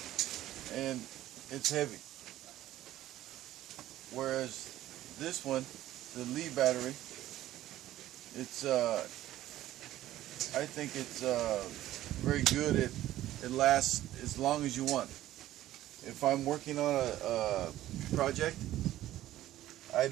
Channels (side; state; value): left; quieter; 14.1 dB